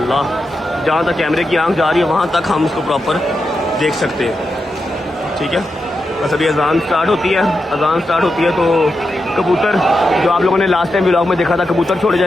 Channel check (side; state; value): both; normal; correlation 0.88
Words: جہاں تک کیمرے کی آنکھ جا رہی ہے وہاں تک ہم اس کو پراپر دیکھ سکتے ہیں، ٹھیک ہے. بس ابھی اذان سٹارٹ ہوتی ہے تو کبوتر جو آپ لوگوں نے لاسٹ ٹائم ولاگ میں دیکھا تھا، کبوتر چھوڑے